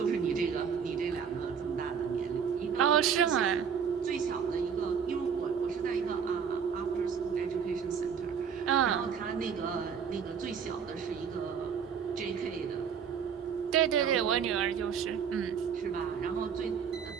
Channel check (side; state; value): left; quieter; 7.0 dB